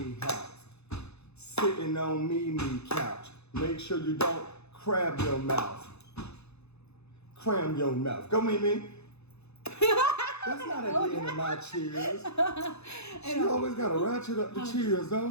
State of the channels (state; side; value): late; right; 0.80 ms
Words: house, sitting on Mimi couch. Make sure you don't crab your mouth. Cram your mouth. Go Mimi. That's not at the end of my cheers. She always gotta ratchet up the cheers,